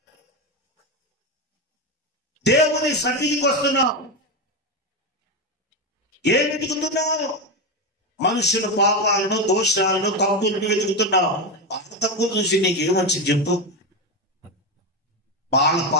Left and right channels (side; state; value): both; normal; correlation 0.13